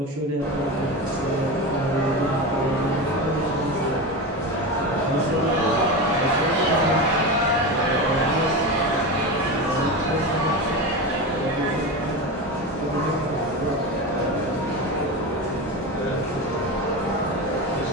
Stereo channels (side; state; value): both; normal; correlation 0.22